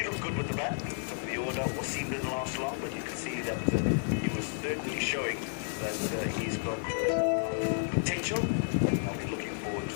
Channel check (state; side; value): silent; right; 57 dB below the other